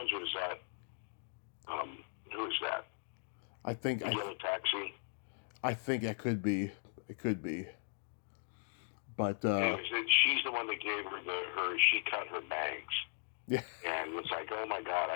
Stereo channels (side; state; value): right; silent; digital silence